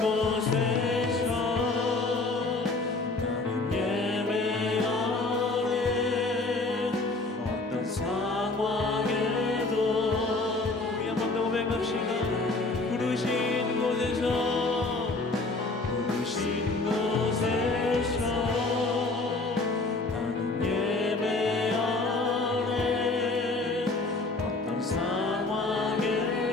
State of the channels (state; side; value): quieter; right; 3.3 dB